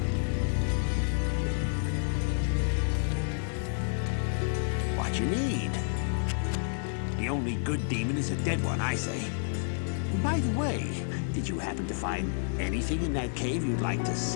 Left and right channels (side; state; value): right; silent; 58 dB below the other